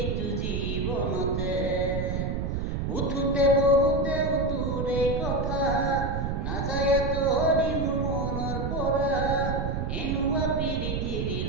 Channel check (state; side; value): noise; right; rumble, 1 dB below the sound